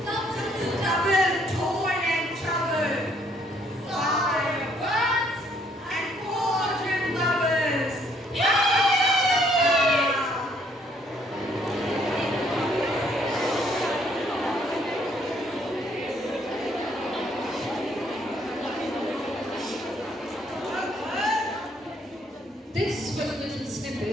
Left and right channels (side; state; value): both; normal; correlation 0.66